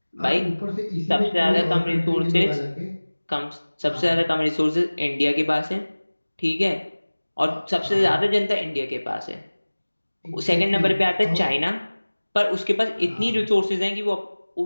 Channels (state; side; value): inverted; both; correlation -1.00